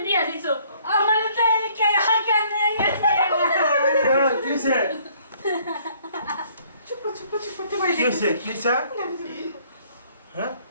বিয়া দিছো? আমার তো চুপ চুপ চুপ করতে কি হয়েছে? কি হয়েছে? হ্যাঁ,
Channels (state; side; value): inverted; both; correlation -0.61